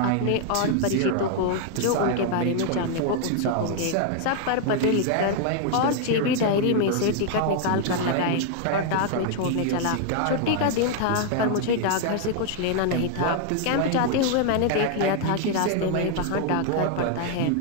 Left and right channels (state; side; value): different; both; correlation 0.00